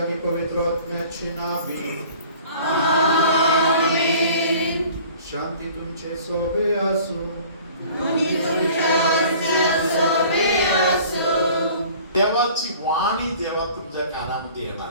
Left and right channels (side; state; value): both; inverted; correlation -0.48